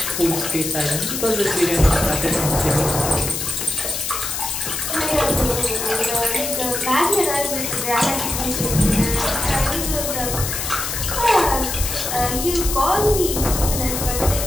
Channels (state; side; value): noise; left; hiss, 3 dB below the sound